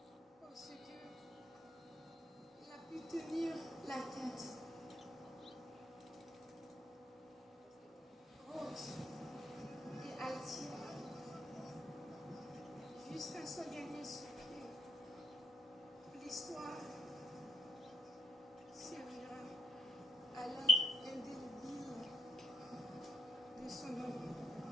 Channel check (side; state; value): both; normal; correlation 0.79